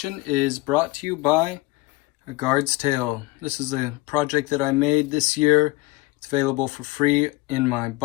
is brought to you by A Guard's Tale. This is a project that I made this year. It's available for free in my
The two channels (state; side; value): quieter; right; 21.6 dB